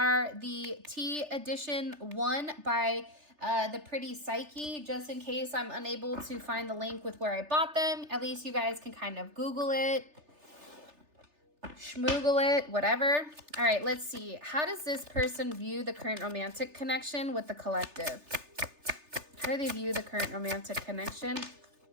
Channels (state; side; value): late; left; 3.3 ms